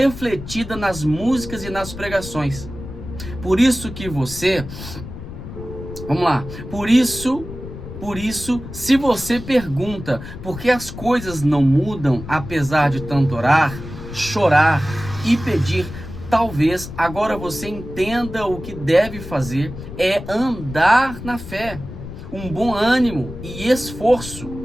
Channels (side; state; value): left; noise; rumble, 11 dB below the sound